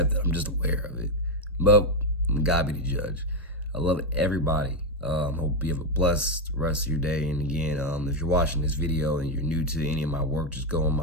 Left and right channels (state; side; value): normal; both; correlation 0.06